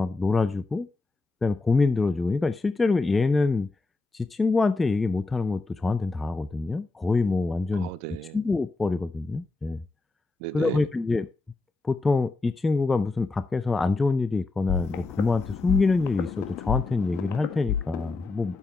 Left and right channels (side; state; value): right; quieter; 3.5 dB